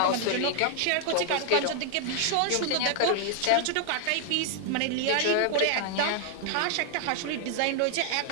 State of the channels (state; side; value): different; both; correlation 0.00